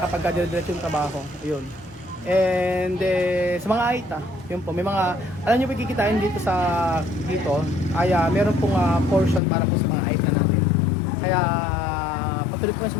dire-diretso yung trabaho, ayun. And sa mga AITA, yun po, may mga, alam nyo, kikitain dito ay meron pong portion para po sa mga AITA natin. Kaya patuloy po na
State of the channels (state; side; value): drops out; right; at 9.4 s